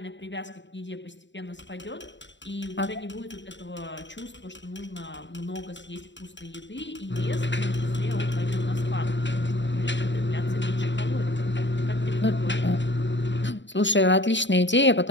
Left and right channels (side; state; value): right; late; 0.53 ms